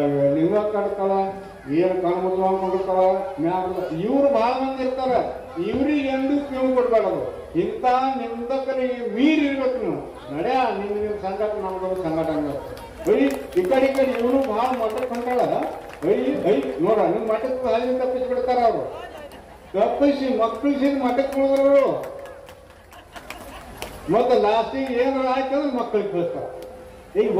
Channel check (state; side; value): identical; both; correlation 1.00